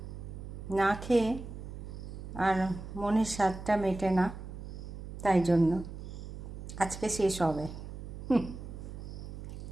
না খেয়ে আর মনের স্বাদটা মেটে না, তাই জন্য আজকে শেষ হবে।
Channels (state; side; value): noise; right; hum, 10 dB below the sound